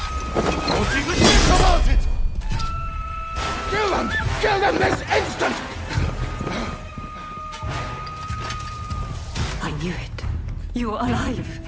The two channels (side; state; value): both; identical; correlation 1.00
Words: Kill them! Kill them this instant! I knew it. You are alive.